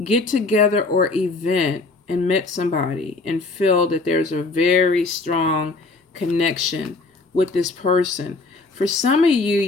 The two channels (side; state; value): right; quieter; 3.5 dB